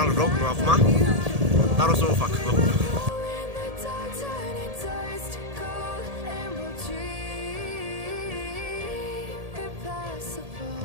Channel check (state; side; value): late; left; 1.8 ms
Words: vlog, nu acum. Dar o să o fac, vă pup.